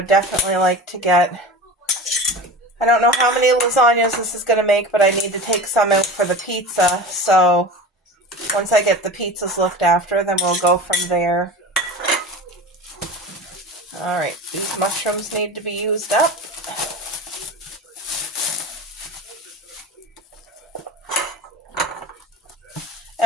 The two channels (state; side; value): normal; both; correlation 0.32